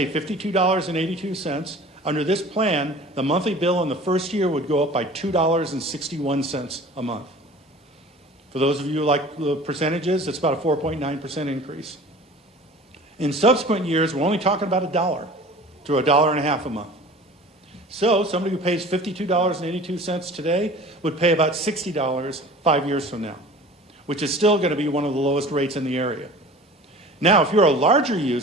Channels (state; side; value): normal; both; correlation 0.42